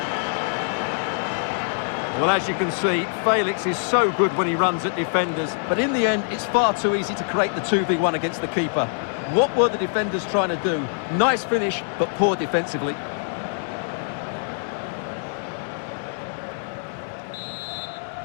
Well, as you can see, Felix is so good when he runs at defenders, but in the end, it's far too easy to create the 2v1 against the keeper. What were the defenders trying to do? Nice finish, but poor defensively.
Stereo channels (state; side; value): silent; right; digital silence